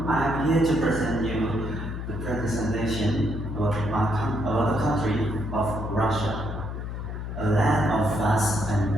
I'm here to present you the presentation about the country of Russia, a land of vast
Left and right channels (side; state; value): left; noise; hum, 6 dB below the sound